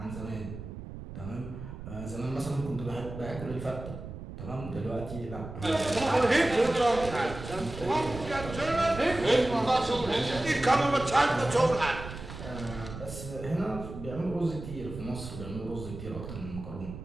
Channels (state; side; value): noise; right; rumble, 10 dB below the sound